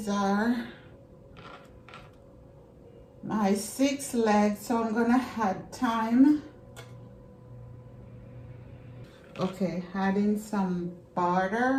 are my 6 legs, so I'm gonna add thyme. Okay, adding some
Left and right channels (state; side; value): identical; both; correlation 1.00